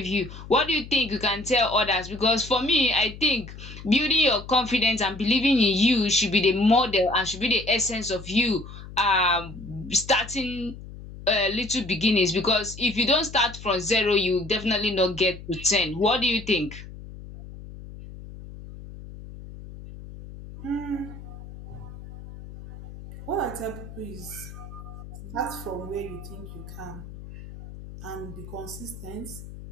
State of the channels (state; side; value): noise; left; hum, 14 dB below the sound